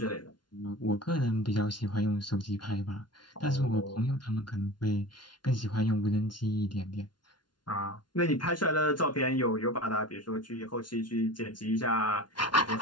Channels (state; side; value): late; right; 0.71 ms